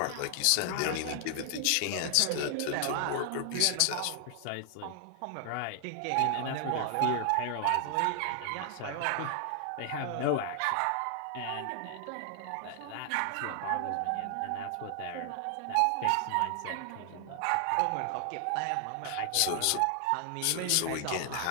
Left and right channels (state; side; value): different; both; correlation 0.00